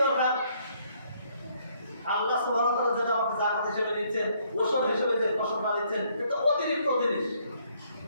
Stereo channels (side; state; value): both; inverted; correlation -0.68